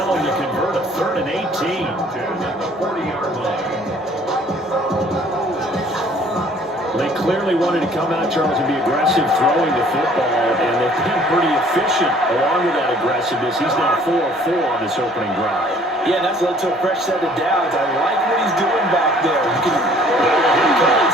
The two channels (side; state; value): both; normal; correlation 0.56